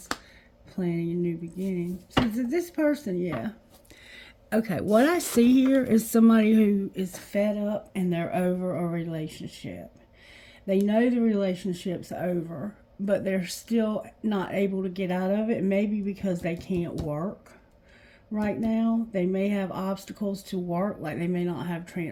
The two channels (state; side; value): identical; both; correlation 1.00